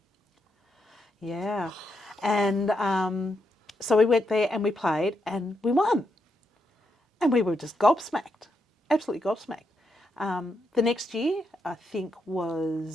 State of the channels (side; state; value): both; normal; correlation 0.82